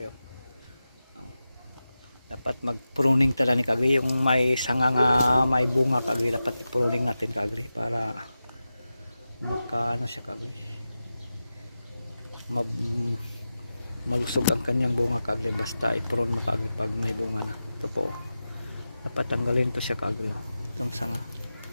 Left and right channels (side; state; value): both; inverted; correlation -0.93